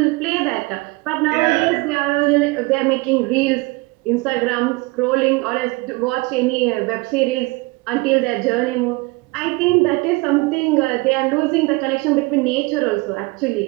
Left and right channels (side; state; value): left; quieter; 24.8 dB